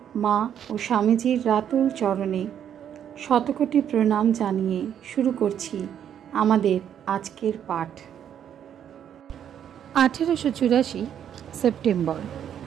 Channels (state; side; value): quieter; left; 9.3 dB